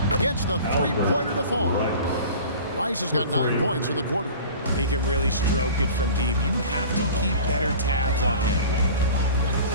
Gets the 3-pointer to fall. Rice has got 9 points in the quarter. He can really stroke it from deep. You have to keep better tabs on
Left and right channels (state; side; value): inverted; both; correlation -0.40